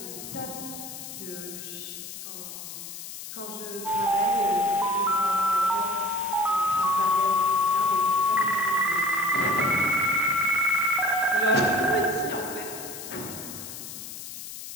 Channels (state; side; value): noise; left; hiss, 11 dB below the sound